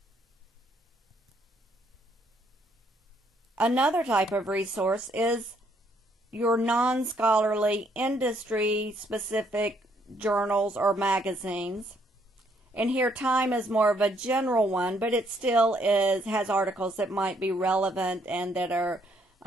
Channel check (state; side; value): normal; both; correlation 0.69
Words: Another type of resource is your non-scholarly, industry-specific journals or magazines. And here Time is more of a general one, but it still has articles that might be relevant and that are